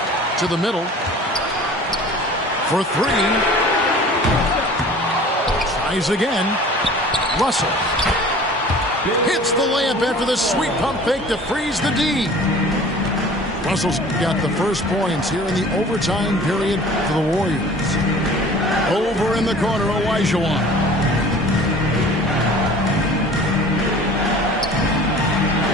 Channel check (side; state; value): both; normal; correlation 0.45